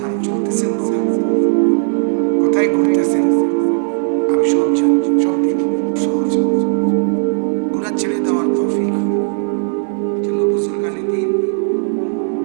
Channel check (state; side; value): silent; left; 66 dB below the other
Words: চলতেছেন কোথায়, কোথায় ঘুরতেছেন, আমি সব জানি, সব দেখি। সহজ গুনাহ ছেড়ে দেওয়ার তৌফিক। এজন্য বুজুর্গানে দিন